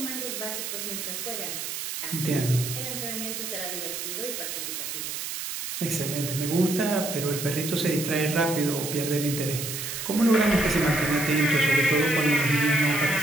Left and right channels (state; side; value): noise; right; hiss, 5 dB below the sound